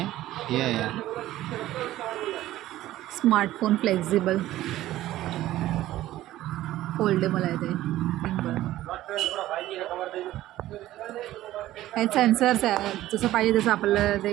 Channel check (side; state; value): left; quieter; 14.8 dB